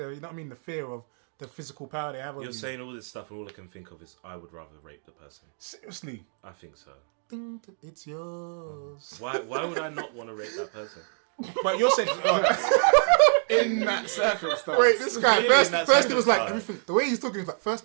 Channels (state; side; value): silent; left; 60 dB below the other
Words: you know what I mean? The fear of the physical power they have over You're you. saying all this stuff, and all I can think of is I would rather rape the person. Seriously. I think so. Ding, it's yours. Why would I not want to rape that person? But you're saying in that circumstance. wait, this guy Really in that first he was like circumstance. everything. The way he's talking is like,